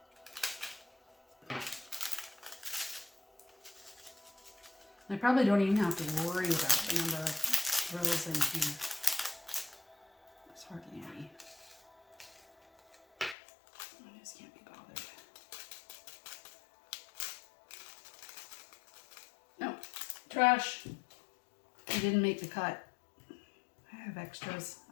I probably don't even have to worry about the number of drills in here. There's hardly any. I just can't be bothered. No, trash. I didn't make the cut. I have extras.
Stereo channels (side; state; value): right; drops out; at 13.4 s